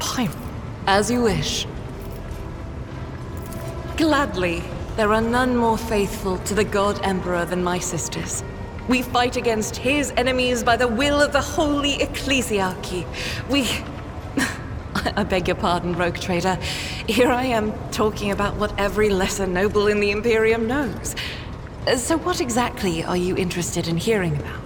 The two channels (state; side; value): identical; both; correlation 1.00